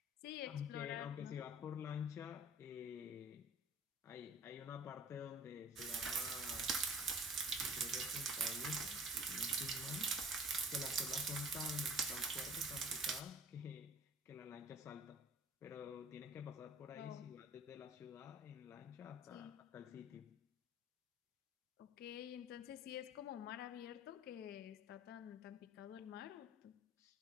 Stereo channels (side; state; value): both; normal; correlation 0.48